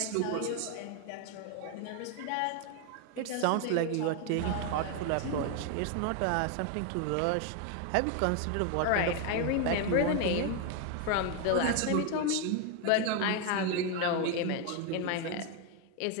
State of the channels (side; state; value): both; different; correlation 0.01